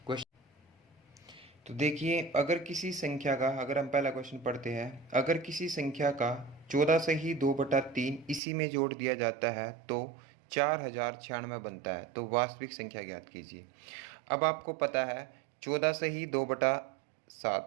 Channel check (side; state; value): left; drops out; at 8.4 s